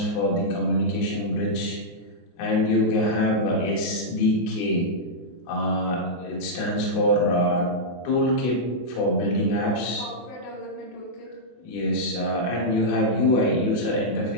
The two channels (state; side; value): late; right; 24 ms